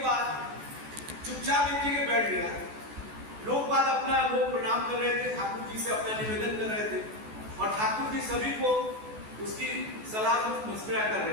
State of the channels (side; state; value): left; late; 14 ms